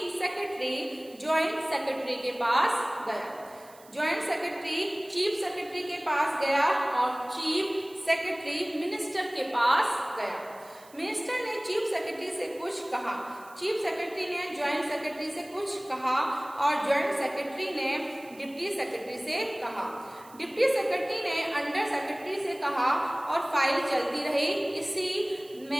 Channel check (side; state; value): right; noise; hiss, 24 dB below the sound